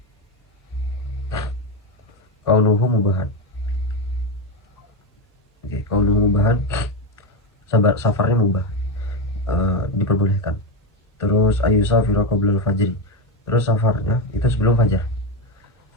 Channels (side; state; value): both; normal; correlation 0.12